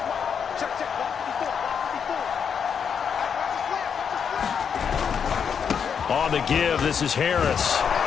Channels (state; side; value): quieter; right; 7.1 dB